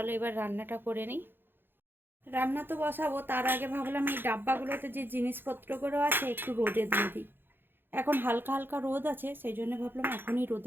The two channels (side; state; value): left; late; 0.10 ms